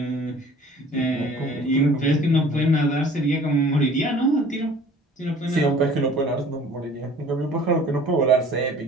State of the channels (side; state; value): both; normal; correlation 0.49